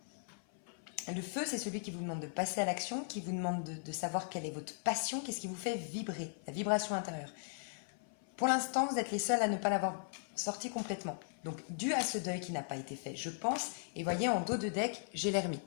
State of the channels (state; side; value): silent; right; 52 dB below the other